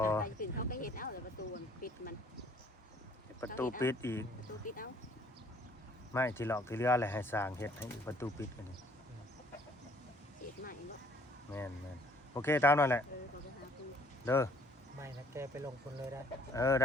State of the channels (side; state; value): both; normal; correlation 0.58